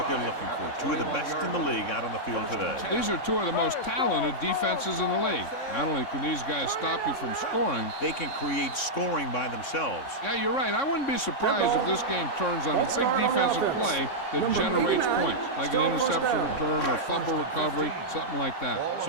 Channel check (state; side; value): late; right; 3.6 ms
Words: they're looking for. Two of the best in the league out on the field today. These are two of the most talented defenses in the league. Not only can these guys stop you from scoring, they can create scoring by themselves. Yeah, you're right. I wouldn't be surprised if this game turns on a big defensive play that generates points, like an interception return or a fumble recovery, something like that. So